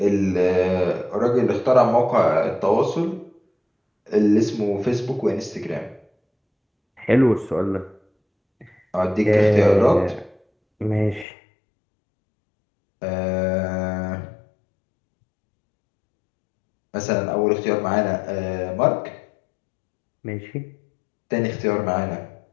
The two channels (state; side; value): drops out; right; at 11.2 s